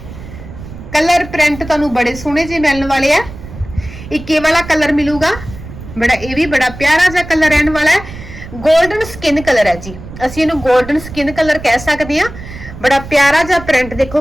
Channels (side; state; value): right; noise; rumble, 14 dB below the sound